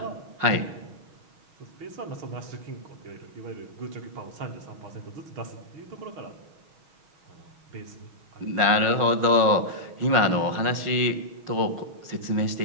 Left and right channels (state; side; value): late; left; 6.3 ms